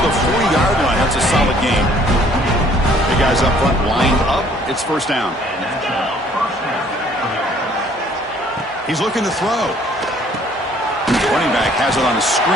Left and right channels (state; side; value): normal; both; correlation 0.59